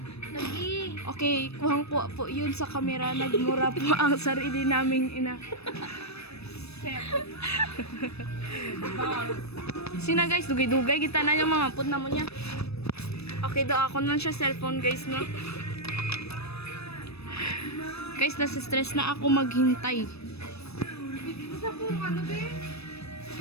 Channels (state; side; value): late; right; 0.79 ms